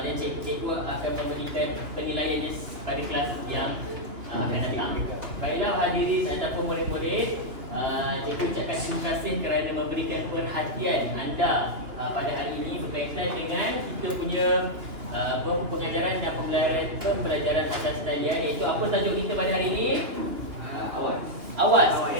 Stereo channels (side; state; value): left; late; 2.9 ms